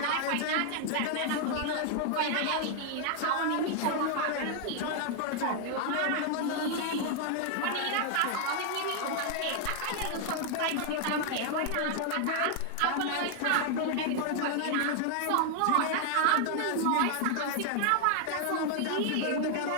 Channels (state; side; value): different; both; correlation 0.00